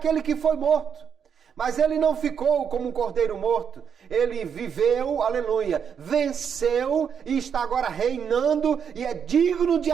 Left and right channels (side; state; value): left; quieter; 7.4 dB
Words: que foi morto. Mas ele não ficou como um cordeiro morto. Ele viveu, aleluia, venceu e está agora reinando e é digno de